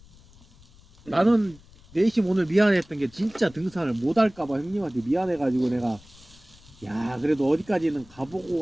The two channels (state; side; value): noise; left; rumble, 25 dB below the sound